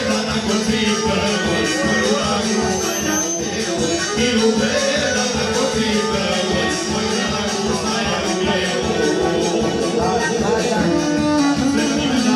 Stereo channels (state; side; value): identical; both; correlation 1.00